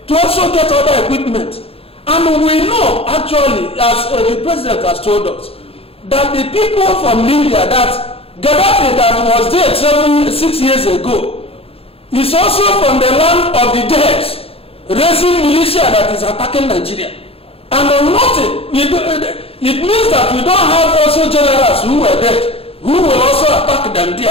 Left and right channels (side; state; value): right; late; 0.28 ms